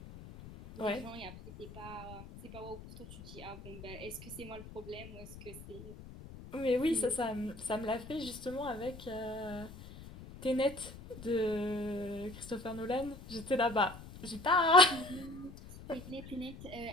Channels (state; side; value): noise; left; rumble, 15 dB below the sound